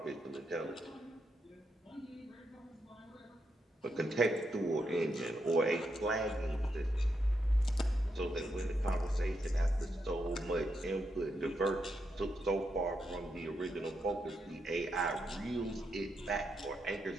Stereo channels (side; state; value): both; normal; correlation 0.82